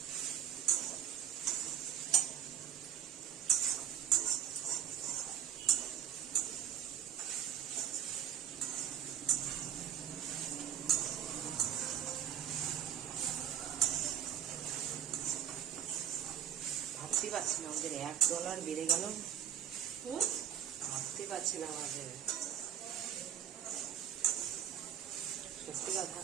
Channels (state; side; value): quieter; left; 9.4 dB